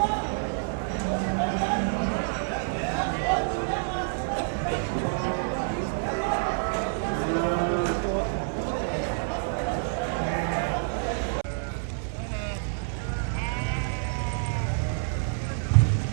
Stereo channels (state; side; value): silent; left; 60 dB below the other